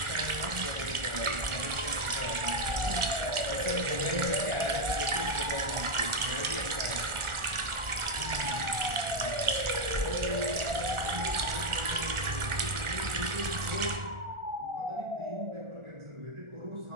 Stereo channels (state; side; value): late; left; 1.4 ms